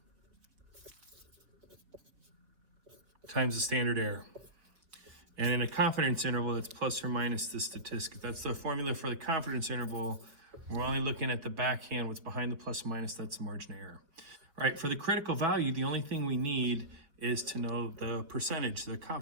times the standard error. And in a confidence interval, that's plus or minus the statistic. That's the formula for the confidence interval. We're only looking at the backhand, what's behind the plus or minus, that's the margin of error. All right, for the critical value, the only thing we need is to know the percentage, the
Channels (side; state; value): left; late; 4.5 ms